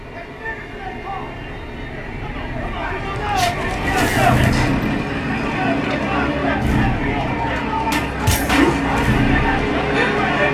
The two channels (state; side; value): identical; both; correlation 1.00